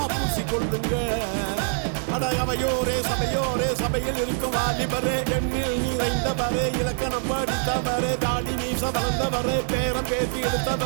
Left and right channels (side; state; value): left; silent; 57 dB below the other